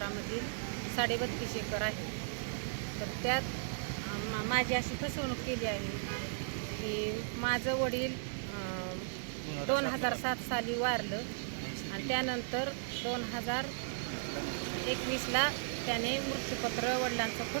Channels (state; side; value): silent; left; digital silence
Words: 32.5 एकर आहे। तर त्यात माझी अशी फसवणूक केली आहे की माझं वडील 2007 साली वारलं आणि त्यानंतर 2021ला त्याने मृत्यूपत्र, वडिलांचं